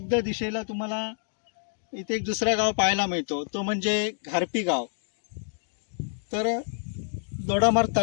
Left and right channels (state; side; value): silent; right; digital silence